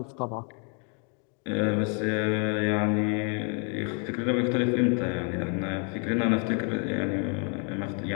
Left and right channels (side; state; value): right; quieter; 39.3 dB